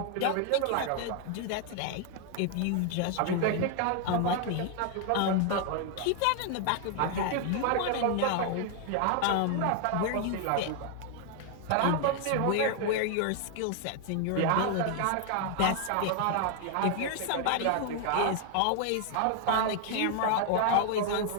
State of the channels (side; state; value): both; different; correlation 0.00